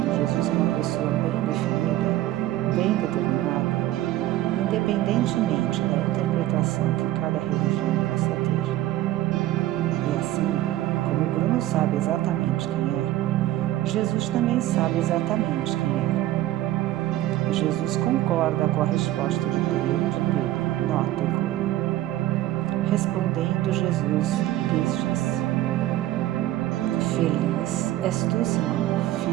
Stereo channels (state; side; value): quieter; left; 14.8 dB